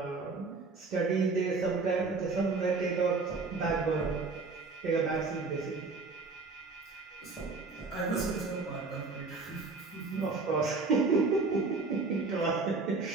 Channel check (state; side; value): quieter; left; 4.0 dB